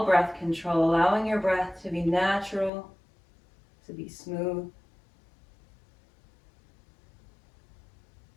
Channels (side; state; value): right; drops out; at 2.7 s